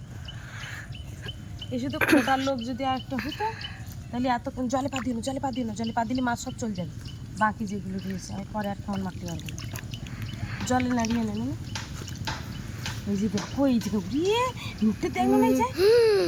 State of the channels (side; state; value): both; identical; correlation 1.00